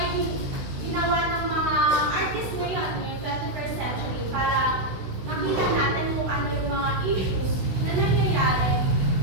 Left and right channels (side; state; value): left; late; 16 ms